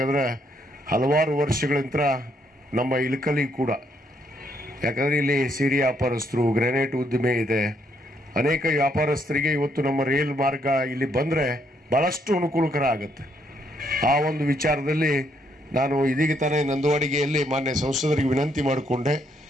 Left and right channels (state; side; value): normal; both; correlation 0.73